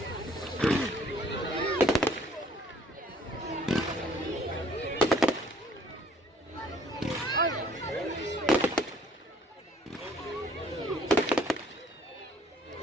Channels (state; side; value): normal; both; correlation 0.60